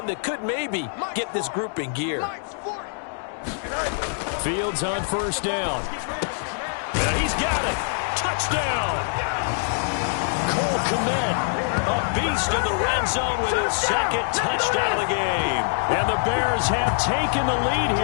that could maybe get this group in gear. Fields on first down. And he's got it. Touchdown. Cole Kmet, a beast in the red zone with his second touchdown of the game. And the Bears have taken the lead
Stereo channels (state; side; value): silent; right; digital silence